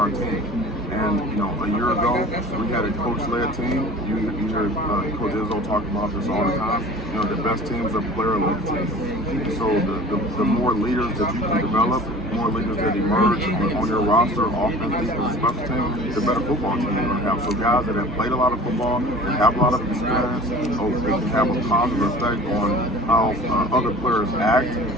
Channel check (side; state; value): both; normal; correlation 0.43